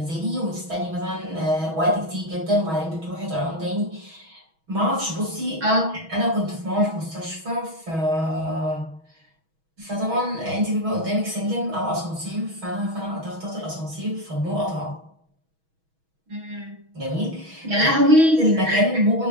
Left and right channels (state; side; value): late; left; 6.2 ms